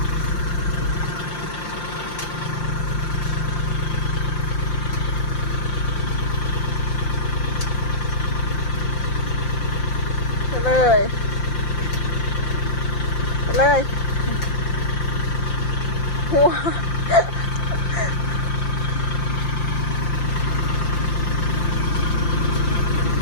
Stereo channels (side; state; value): right; late; 5.8 ms